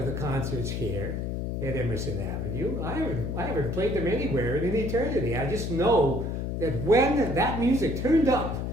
the concerts here at Emerson Avenue. I haven't played them anywhere in an eternity. I just know that when that music turned up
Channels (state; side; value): noise; left; hum, 2 dB below the sound